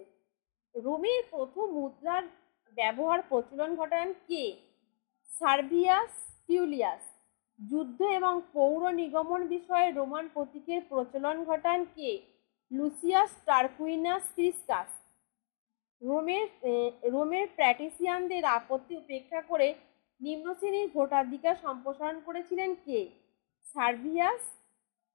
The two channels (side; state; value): right; silent; 55 dB below the other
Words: রোমের প্রথম মুদ্রার ব্যবহার প্রচলন ঘটান কে? সার্ভিয়াস টিউলিয়াস। যুদ্ধ এবং পৌর নিগমন বিষয়ে রোমান প্রতীকের প্রচলন ঘটান কে? Lucius Tarquinius প্রিসকাস। রোমের প্যাট্রিসিয়ানদের আপত্তি উপেক্ষা করে নিম্ন শ্রেণীর ভোটাধিকার সম্প্রসারণ করেছিলেন কে?